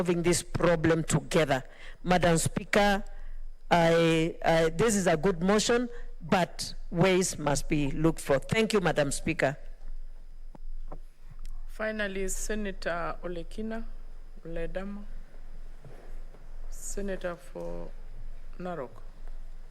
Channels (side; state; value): both; identical; correlation 1.00